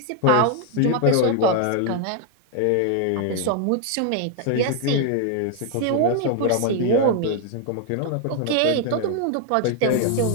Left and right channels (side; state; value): both; different; correlation 0.00